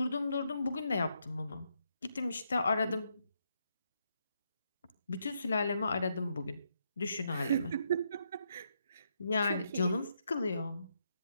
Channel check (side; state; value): both; inverted; correlation -0.78